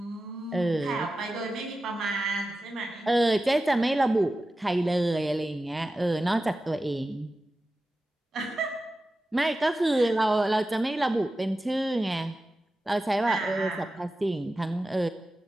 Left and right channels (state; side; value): normal; both; correlation 0.93